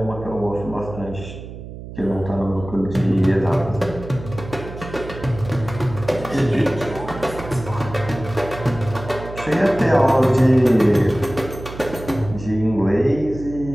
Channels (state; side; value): noise; right; hum, 12 dB below the sound